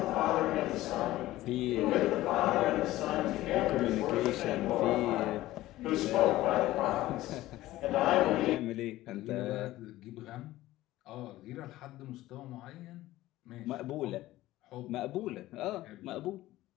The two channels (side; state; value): right; quieter; 16.2 dB